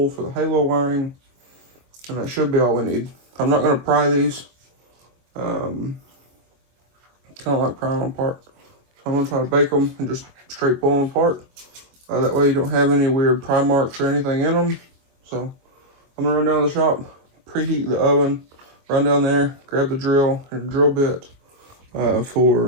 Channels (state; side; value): late; left; 24 ms